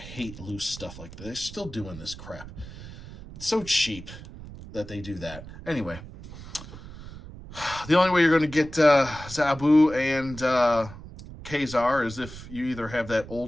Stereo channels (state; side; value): noise; right; rumble, 14 dB below the sound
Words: loose stuff like this. They're still doing this crap. It's so cheap that they do that. Anyway, the only way you're going to get Zabu and Kazar is if you either have that